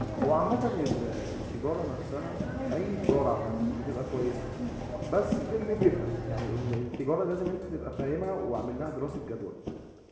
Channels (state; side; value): identical; both; correlation 1.00